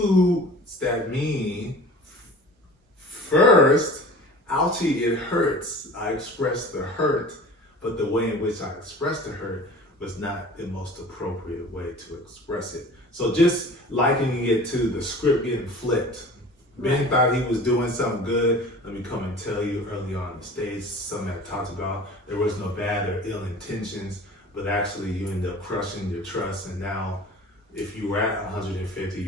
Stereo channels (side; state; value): both; normal; correlation 0.41